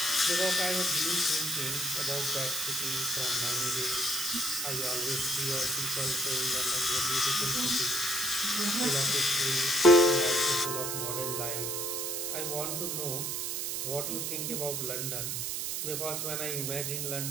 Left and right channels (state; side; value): noise; right; hiss, 2 dB below the sound